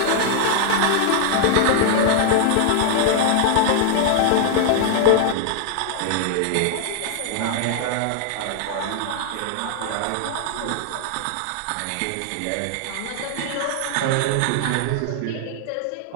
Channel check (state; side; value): different; both; correlation -0.01